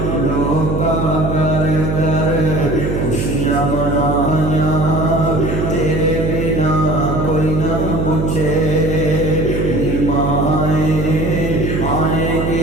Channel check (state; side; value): noise; right; hum, 2 dB below the sound